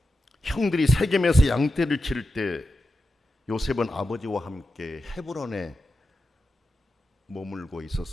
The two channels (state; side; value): normal; both; correlation 0.90